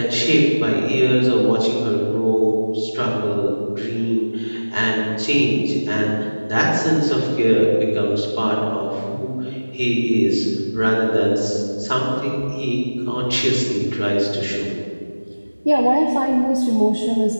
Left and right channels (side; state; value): both; inverted; correlation -1.00